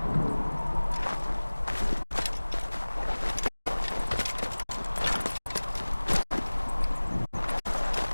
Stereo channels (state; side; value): inverted; both; correlation -1.00